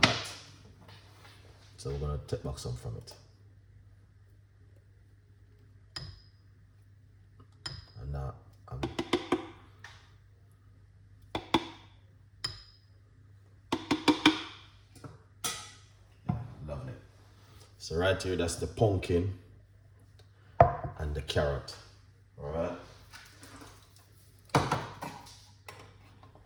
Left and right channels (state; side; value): identical; both; correlation 1.00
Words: lot. So we're gonna take back some from it. And now lovely. So right here, that's the pumpkin and the carrot. All right.